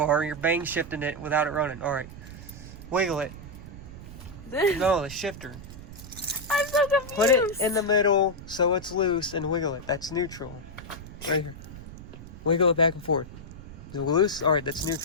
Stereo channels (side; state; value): right; noise; rumble, 14 dB below the sound